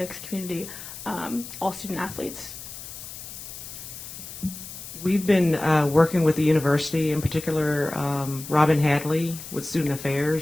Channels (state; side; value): noise; left; hiss, 12 dB below the sound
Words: community, all student athletes. We've been working with the university, in particular Robin Hadley with Student